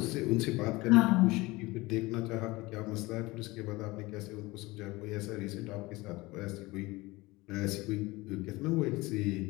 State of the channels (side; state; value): right; quieter; 21.7 dB